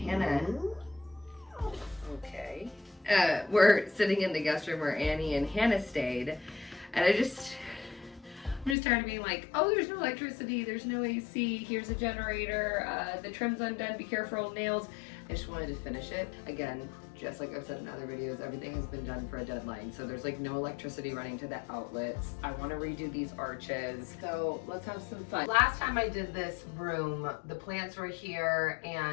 okay, we're sitting in the guest room where Annie and Hannah stayed, and I'm just tired of being like, oh, there's no electricity, there's no AC, here's a generator, the trim's undone, be careful, nails. I just wanted to finish it. Again, just like I've said in other videos, everything has been done for a deadline. So there's like no electricity running to the outlets. I want to redo these arches. So let's have some fun. Last time I did this room, the plants were here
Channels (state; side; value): drops out; right; at 8.8 s